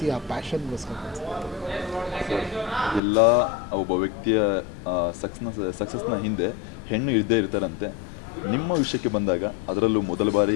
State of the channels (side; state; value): right; drops out; at 3.0 s